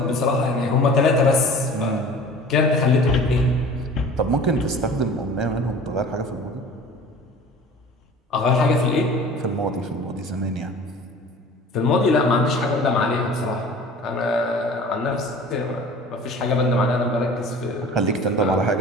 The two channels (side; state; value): both; normal; correlation 0.43